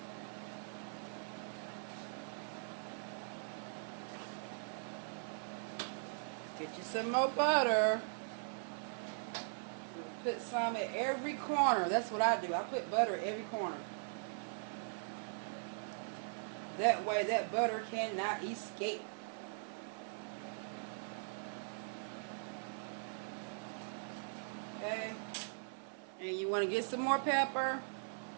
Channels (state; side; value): silent; left; 51 dB below the other